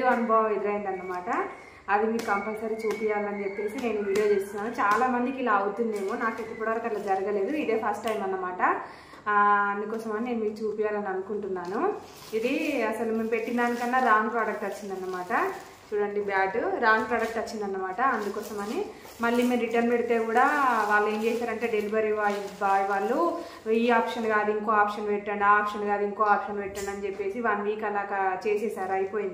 అనుభవం ఎదురైందన్నమాట. అది మీకు కంపల్సరీ చూపించాలని చెప్పేసి నేను వీడియో చేస్తున్నాను. చాలా మందికి ఇలా అవుతుందేమో, నాకు ఇప్పటివరకు అట్లా జరగలేదు. ఇదే ఫస్ట్ టైం అన్నమాట. అందుకోసమని నేను మీకు చూపించాలని అనుకుంటున్నాను. ఇది అసలు మేము పెట్టిన దానికన్నా రాంగ్ ప్రోడక్ట్ వచ్చిందన్నమాట. చూడండి, బ్యాట్ రాంగ్ ప్రోడక్ట్ వచ్చిందన్నమాట. అందుకోసమని మళ్ళీ మీరు రిటర్న్ పెడితే కూడా వాళ్ళు ఏం చేశారంటే, డెలివరీ బాయ్ వాళ్ళు ఈ ఆప్షన్ కాదు ఇంకో ఆప్షన్ పెట్టండి, ఆ ఆప్షన్ కాదు ఇంకో ఆప్షన్ పెట్టండి అని చెప్పేసి 1 వీక్ అలా చేసేసారు.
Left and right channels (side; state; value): both; identical; correlation 1.00